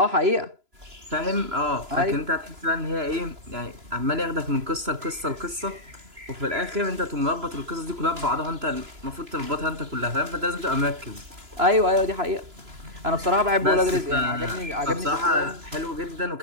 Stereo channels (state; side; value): late; left; 3.0 ms